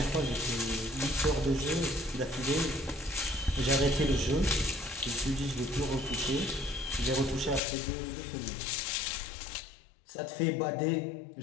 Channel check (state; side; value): drops out; right; at 7.6 s